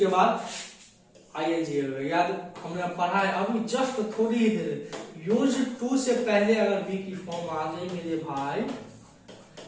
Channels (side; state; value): both; identical; correlation 1.00